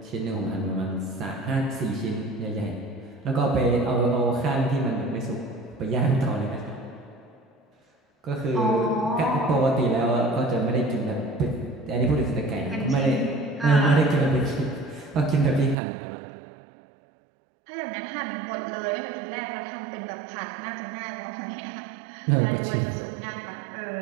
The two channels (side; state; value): left; drops out; at 15.8 s